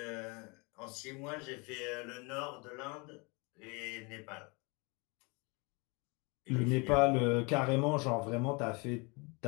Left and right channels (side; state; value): right; quieter; 29.8 dB